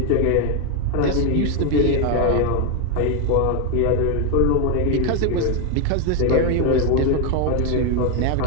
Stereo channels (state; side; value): different; both; correlation 0.01